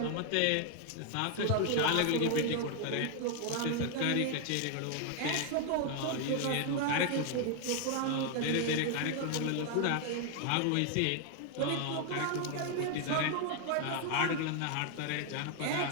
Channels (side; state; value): both; different; correlation 0.00